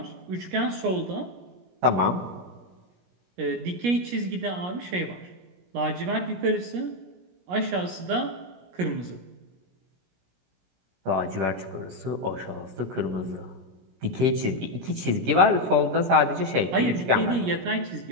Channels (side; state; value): left; late; 17 ms